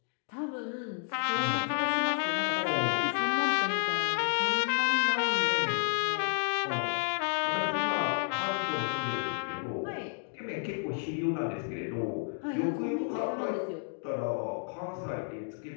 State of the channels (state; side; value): silent; right; 57 dB below the other